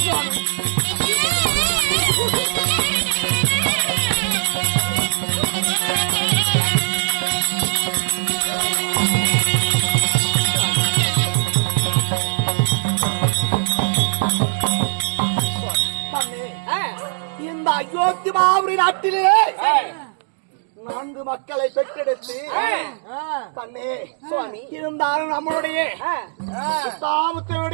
இந்த அயோத்தி மாபுரி நாட்டிலே 4 மக்களை பெற்றெடுத்து தன்னே சுவாமி இருந்தாலும் நம்மளுடைய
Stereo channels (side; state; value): left; silent; digital silence